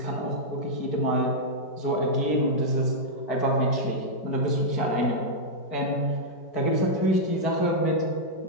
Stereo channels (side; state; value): right; late; 4.6 ms